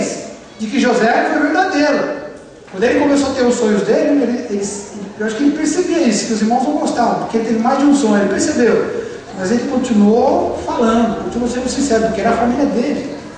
de que José foi verdadeiro. Quando ele começou a ter os sonhos dele, eu acho que ele percebia isso, que os irmãos não gostavam, porque ele teve mais de um sonho, ele percebeu. Mas ele continuou falando, continuou sendo sincero, porque era a família dele.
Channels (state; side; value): identical; both; correlation 1.00